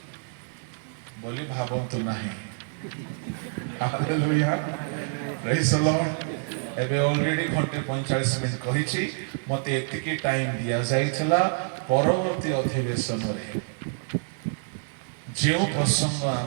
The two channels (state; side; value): silent; left; digital silence